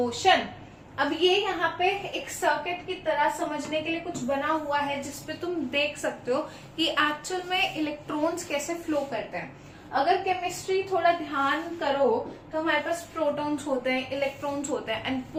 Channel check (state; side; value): identical; both; correlation 1.00